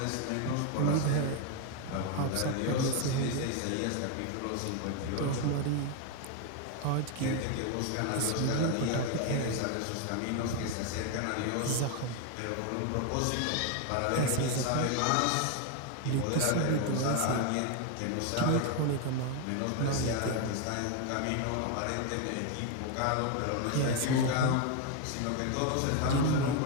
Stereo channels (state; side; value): different; both; correlation 0.01